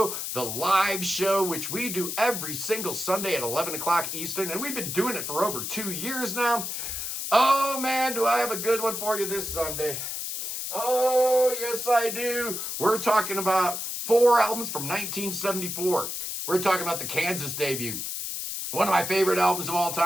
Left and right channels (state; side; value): noise; left; hiss, 4 dB below the sound